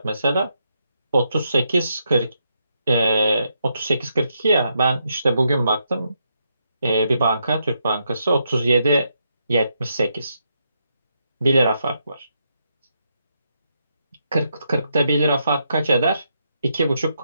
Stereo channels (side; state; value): both; inverted; correlation -0.80